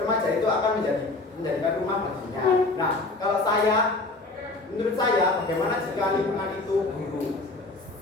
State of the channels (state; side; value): quieter; right; 3.2 dB